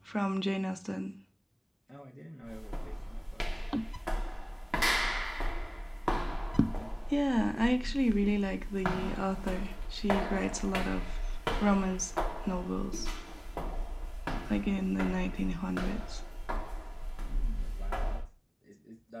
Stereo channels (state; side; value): identical; both; correlation 1.00